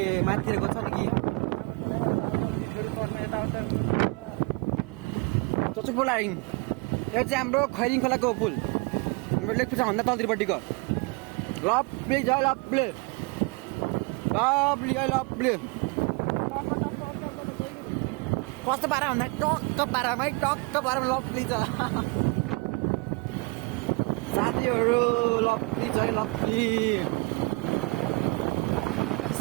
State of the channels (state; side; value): quieter; left; 27.9 dB